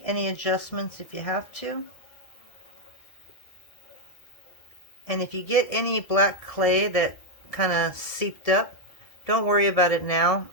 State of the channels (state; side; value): late; right; 1.7 ms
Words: any adjustments if you have to. And if you get any black clay that kind of seeped up, don't worry about it now.